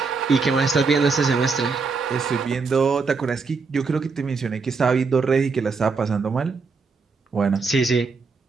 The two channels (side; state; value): left; quieter; 4.7 dB